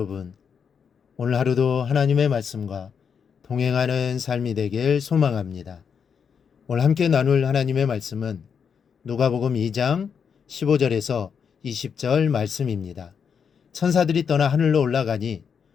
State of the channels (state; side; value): quieter; right; 6.8 dB